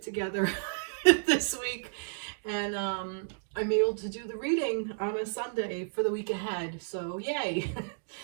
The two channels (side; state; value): left; silent; digital silence